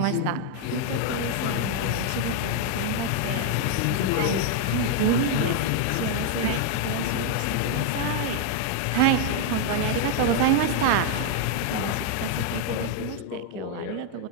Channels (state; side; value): different; both; correlation 0.00